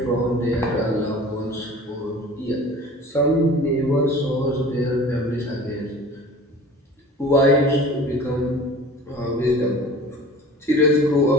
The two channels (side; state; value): both; normal; correlation 0.42